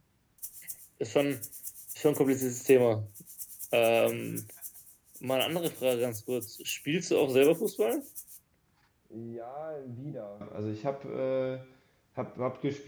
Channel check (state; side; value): identical; both; correlation 1.00